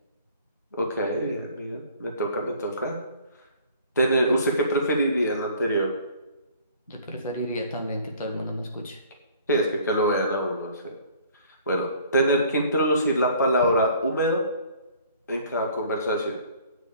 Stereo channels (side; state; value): both; inverted; correlation -0.53